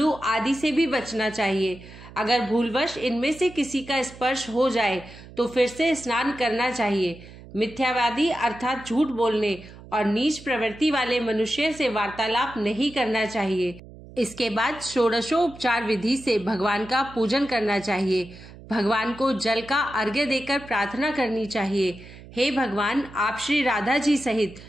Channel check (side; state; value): right; noise; hum, 18 dB below the sound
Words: आदि से भी बचना चाहिए। अगर भूलवश इनमें से किसी का स्पर्श हो जाए तो फिर से स्नान करना चाहिए। मिथ्यावादी अर्थात झूठ बोलने और नीच प्रवृत्ति वाले मनुष्य से वार्तालाप नहीं करना चाहिए। इसके बाद षोडशोपचार विधि से भगवान का पूजन करना चाहिए। भगवान को जल का अर्घ्य देकर प्रार्थना करनी चाहिए, हे भगवान, आप श्री राधा जी सहित